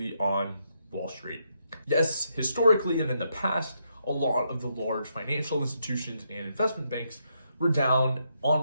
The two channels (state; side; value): inverted; both; correlation -0.79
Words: on Wall Street. Yes, historically and in the past, a lot of the large financial institutions and investment banks were down